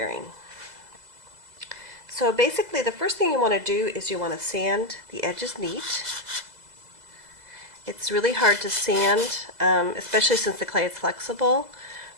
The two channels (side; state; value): left; late; 2.0 ms